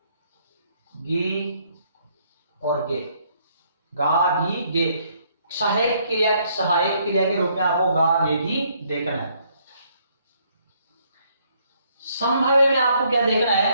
गी और गे, गा गी गे। सहायक क्रिया के रूप में आपको गा गे गी देखना है। संभाव्य में आपको क्या देखना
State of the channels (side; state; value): both; inverted; correlation -0.68